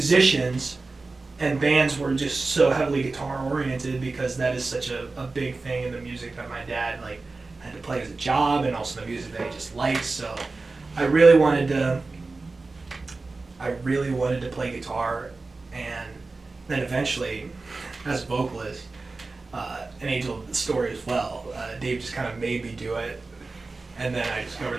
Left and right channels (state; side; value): quieter; left; 3.6 dB